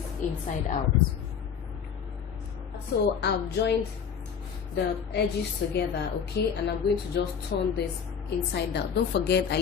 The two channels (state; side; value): quieter; right; 7.1 dB